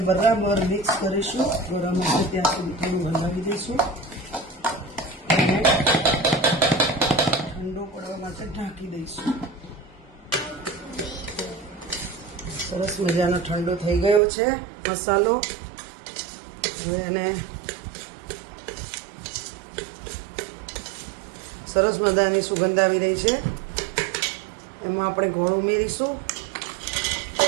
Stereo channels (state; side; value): drops out; left; at 14.2 s